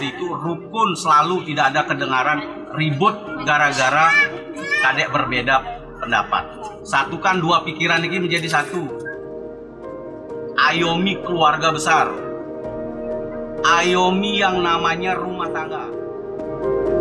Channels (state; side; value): identical; both; correlation 1.00